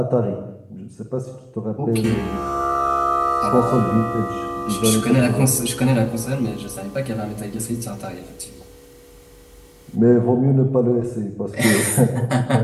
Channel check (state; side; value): identical; both; correlation 1.00